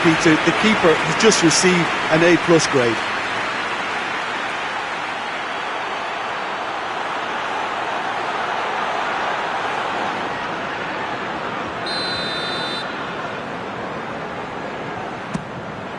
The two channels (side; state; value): both; identical; correlation 1.00